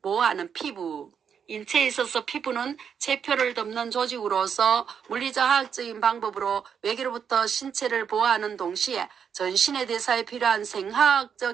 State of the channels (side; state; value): left; quieter; 7.4 dB